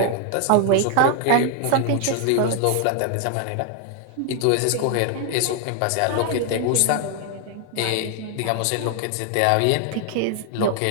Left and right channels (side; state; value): both; different; correlation 0.01